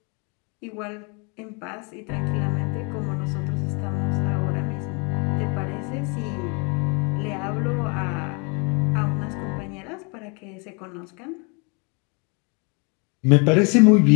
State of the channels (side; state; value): right; quieter; 32.8 dB